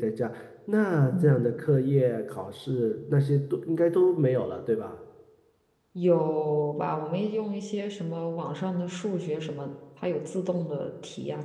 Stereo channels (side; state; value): both; identical; correlation 1.00